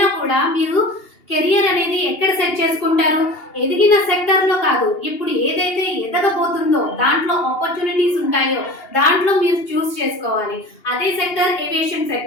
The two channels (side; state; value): right; late; 2.8 ms